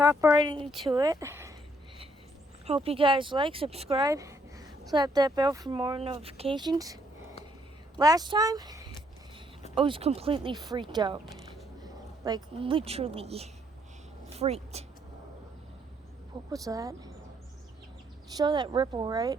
right into it. Hope you guys like, subscribe, slap that bell for more notifications. Last time, I was completely freaked out. Like, literally freaked. What was that? Saw that ripple, right?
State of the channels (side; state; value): both; normal; correlation 0.70